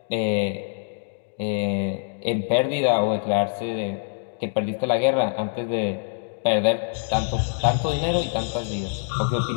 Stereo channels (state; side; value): silent; right; digital silence